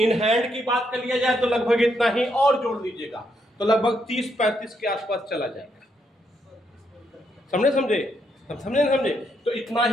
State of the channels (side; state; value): both; normal; correlation 0.77